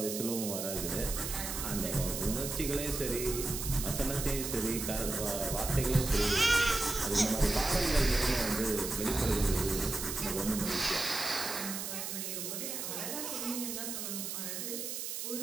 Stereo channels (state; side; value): noise; right; hiss, 4 dB below the sound